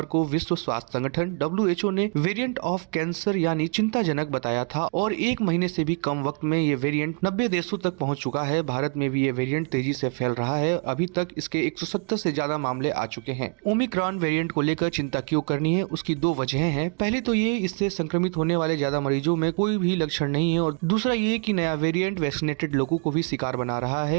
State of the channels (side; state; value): left; quieter; 39.2 dB